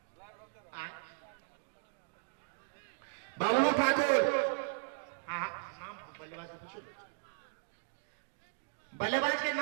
बाबलू ठाकुर। हाँ नाम बल्लेबाज से पूछो। बल्लेबाज के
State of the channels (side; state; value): left; silent; digital silence